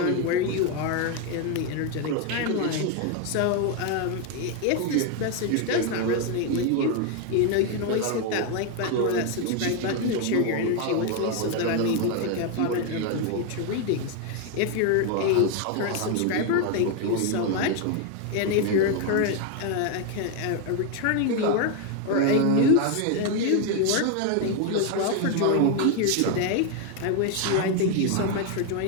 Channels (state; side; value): different; both; correlation 0.01